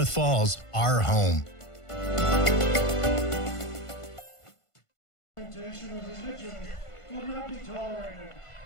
Falls our home.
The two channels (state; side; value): late; right; 1.5 ms